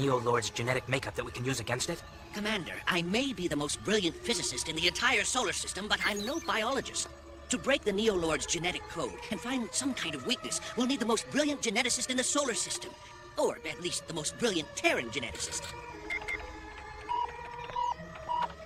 genetic makeup that we can use against it? Commander, I may be the most brilliant physicist in the entire solar system, but I'm no biologist. To break the Neo-Lord's genetic code and find some kind of weakness, we'll need the most brilliant geneticist in the solar system. Or at least the most brilliant Terran geneticist.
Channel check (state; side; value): identical; both; correlation 1.00